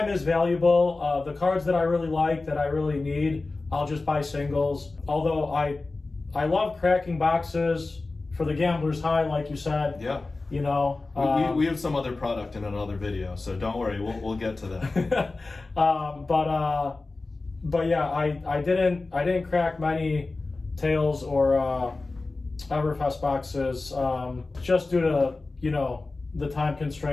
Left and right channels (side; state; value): right; quieter; 3.5 dB